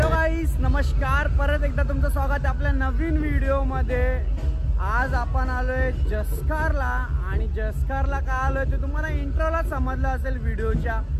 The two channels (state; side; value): identical; both; correlation 1.00